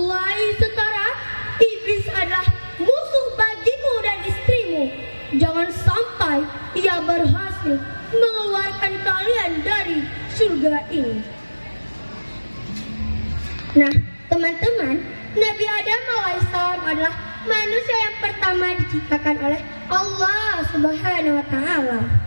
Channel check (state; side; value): inverted; both; correlation -1.00